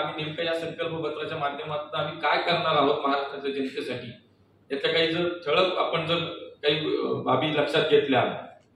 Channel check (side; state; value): both; identical; correlation 1.00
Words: नेमकं या संकल्पपत्राच्या माध्यमातून आम्ही काय करणार आहोत महाराष्ट्राच्या जनतेसाठी, याच्या काही जर ठळक आपण जर काही बाबी लक्षात घेतल्या,